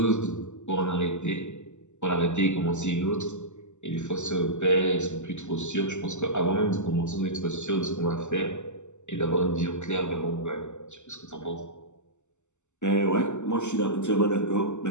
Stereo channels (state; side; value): late; right; 0.84 ms